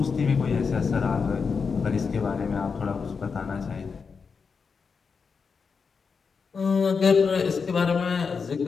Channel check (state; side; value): quieter; right; 5.4 dB